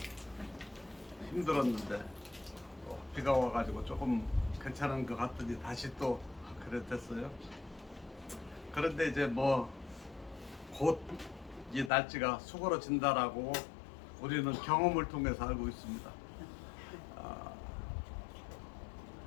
힘들었는데 비가 와가지고 조금 괜찮은 것 같더니 다시 또 그랬댔어요. 그런데 이제 뭐 곧 이 날씨가 수그러진다라고 우리는 경험을 통해서 알고 있습니다.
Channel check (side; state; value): right; drops out; at 11.9 s